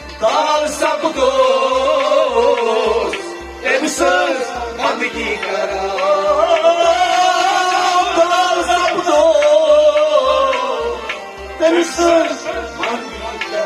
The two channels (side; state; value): both; identical; correlation 1.00